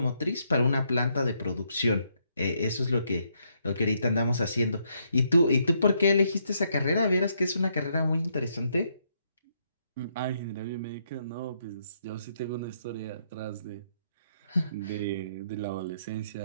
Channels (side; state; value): both; inverted; correlation -0.75